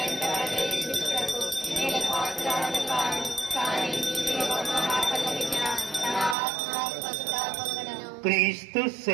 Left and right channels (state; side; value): drops out; left; at 6.4 s